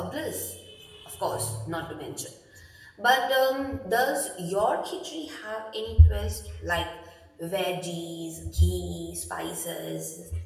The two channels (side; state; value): both; identical; correlation 1.00